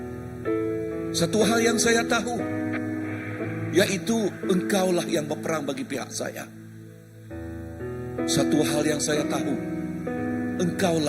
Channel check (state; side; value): identical; both; correlation 1.00